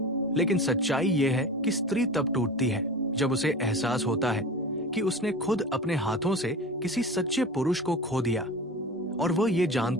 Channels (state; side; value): normal; both; correlation 0.33